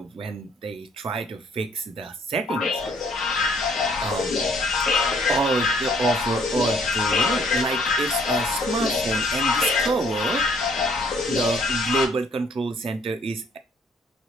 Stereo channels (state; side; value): normal; both; correlation 0.63